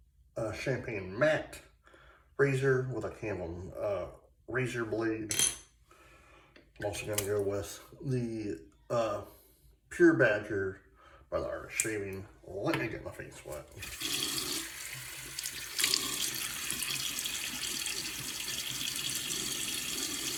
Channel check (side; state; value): both; identical; correlation 1.00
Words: champagne matte razor with a Canvam razor blade. I'm also going to go with the Pure Badger by the Art of Shaving. Let me get my face wet.